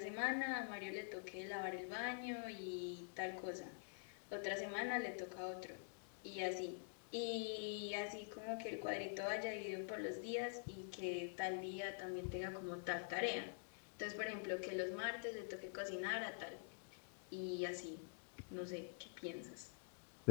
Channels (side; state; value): right; silent; digital silence